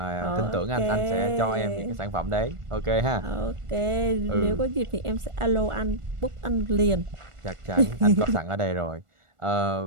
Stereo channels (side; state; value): left; late; 1.4 ms